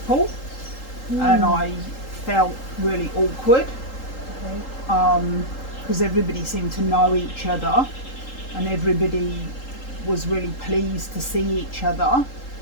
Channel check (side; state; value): right; late; 3.8 ms